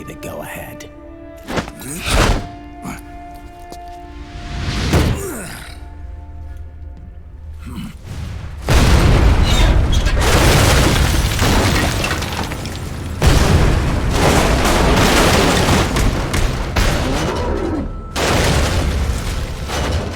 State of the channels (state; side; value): identical; both; correlation 1.00